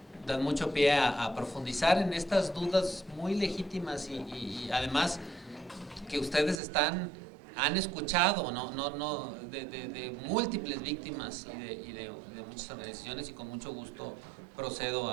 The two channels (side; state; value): left; drops out; at 6.6 s